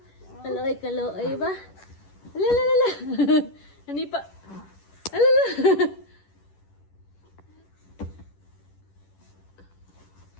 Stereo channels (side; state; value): right; late; 10 ms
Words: Kaloy, kaloy ba? Alalala. Hani pa. Alala.